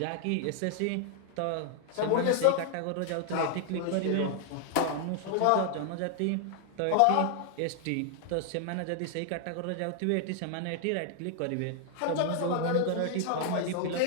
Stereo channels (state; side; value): different; both; correlation 0.00